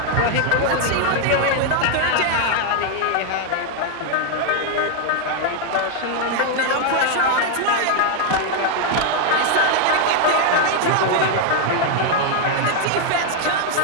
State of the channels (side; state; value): both; different; correlation 0.00